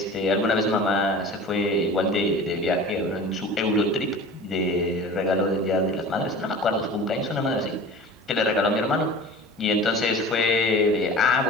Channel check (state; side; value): normal; both; correlation 0.38